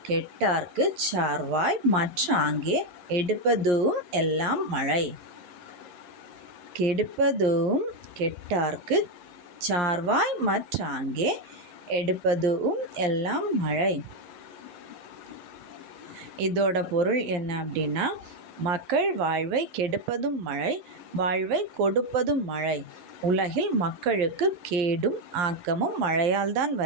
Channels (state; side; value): late; left; 11 ms